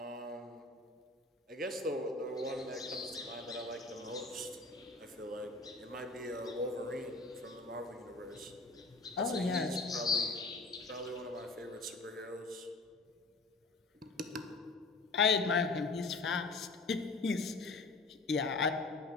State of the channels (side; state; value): right; quieter; 3.4 dB